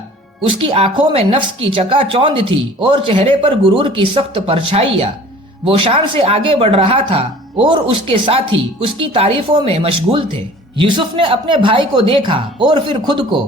اس کی آنکھوں میں نفس کی چکا چوند تھی اور چہرے پر غرور کی سخت پرچھائیاں۔ وہ شان سے آگے بڑھ رہا تھا اور اس کے ساتھی اس کی تعریفوں میں مشغول تھے۔ یوسف نے اپنے بھائی کو دیکھا اور پھر خود کو۔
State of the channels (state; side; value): normal; both; correlation 0.47